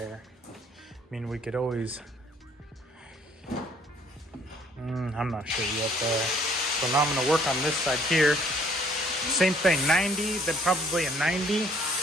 I mean, we could always, I'm not sure yet there. So now I'm gonna work on this side here. Same thing, 90, then probably a 90.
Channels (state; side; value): normal; both; correlation 0.61